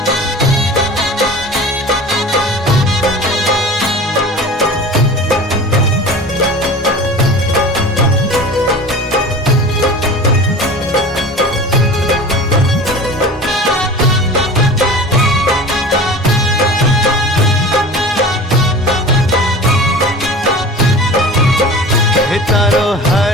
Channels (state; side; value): normal; both; correlation 0.37